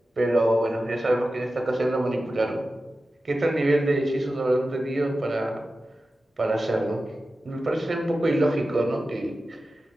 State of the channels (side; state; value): both; normal; correlation 0.93